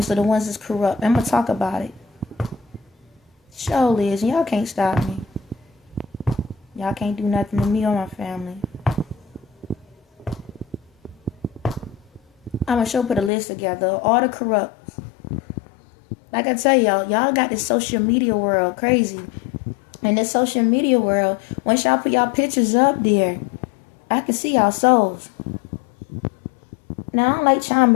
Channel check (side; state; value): right; drops out; at 13.3 s